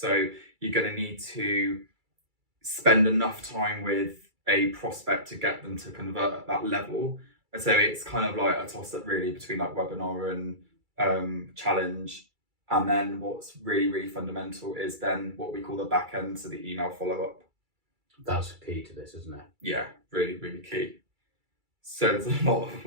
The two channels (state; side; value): late; left; 2.3 ms